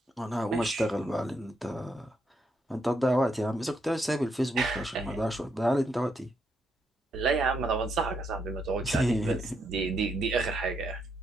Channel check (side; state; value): both; normal; correlation 0.78